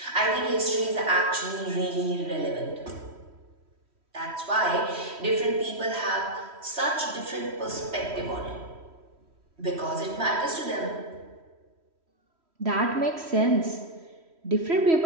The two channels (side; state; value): left; late; 3.1 ms